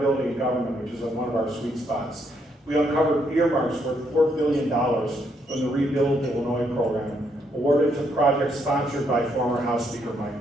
in government, which is one of our sweet spots. We uncovered earmarks worth $4 billion from the Rebuild Illinois program, awarded to projects sponsored by former House Speaker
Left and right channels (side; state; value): both; normal; correlation 0.74